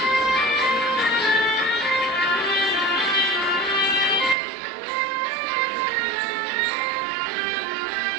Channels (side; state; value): left; drops out; at 4.4 s